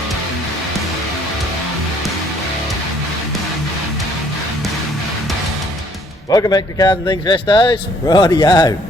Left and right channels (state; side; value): normal; both; correlation 0.62